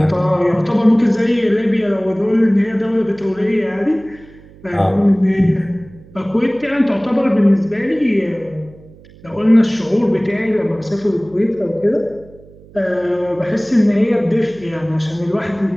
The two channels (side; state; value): right; noise; hum, 23 dB below the sound